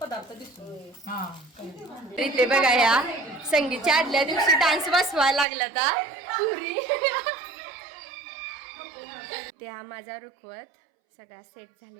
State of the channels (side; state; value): left; drops out; at 5.5 s